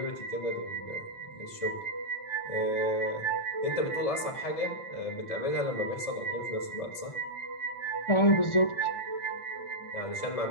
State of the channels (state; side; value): late; right; 1.7 ms